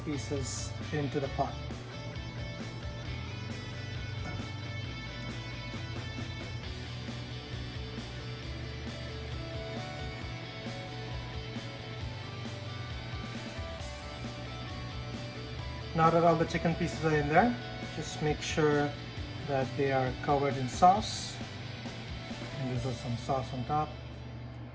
pieces into the pot. Now that all the chicken pieces are in there, just make sure that they are covered in sauce. And there's some sauce on top.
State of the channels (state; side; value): identical; both; correlation 1.00